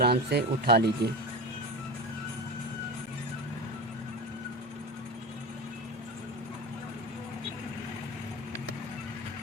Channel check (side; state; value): both; normal; correlation 0.26